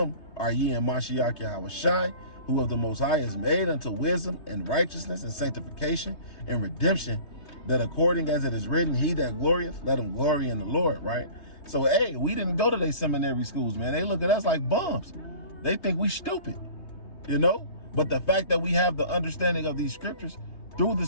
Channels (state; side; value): late; right; 3.2 ms